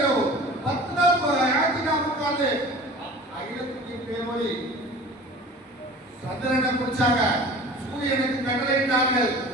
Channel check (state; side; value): normal; both; correlation 0.41